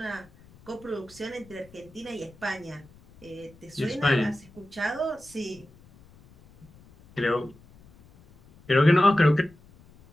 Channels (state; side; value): noise; left; rumble, 25 dB below the sound